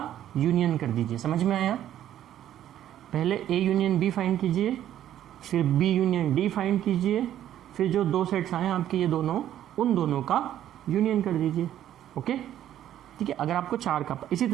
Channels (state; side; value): quieter; left; 11.6 dB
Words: यूनियन कर दीजिए। समझ में आया? पहले ए यूनियन बी फाइंड कीजिए, फिर बी यूनियन डी फाइंड कीजिए, फिर जो 2 सेट्स आए आपके ये दोनों, उन दोनों का यूनियन कर दीजिए। ओके, ठीक है। अगर आपको 4 का, इसी